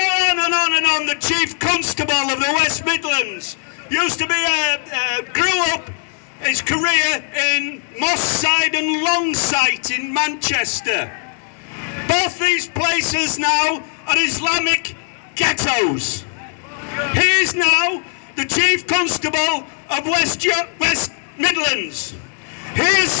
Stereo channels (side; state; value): right; silent; 62 dB below the other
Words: on and on and on. The Chief Constable of the West Midlands used to be grew up his career in Moss Side and Longsight in Manchester. Both these places now are Islamic ghettos. He is now the Chief Constable of West Midlands. He has